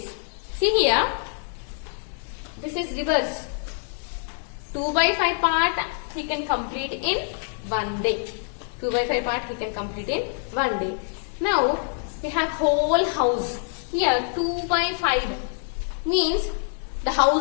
See here, this is reverse. 2 by 5 part he can complete in 1 day. 2 by 5 part he can complete in 1 day. Now we have whole house. Here 2 by 5 means the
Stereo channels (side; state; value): right; silent; 61 dB below the other